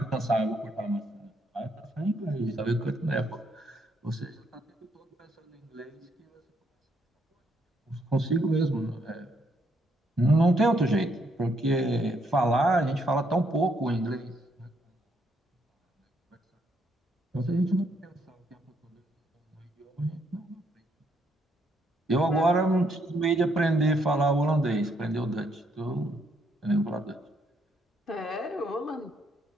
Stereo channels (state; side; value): normal; both; correlation 0.73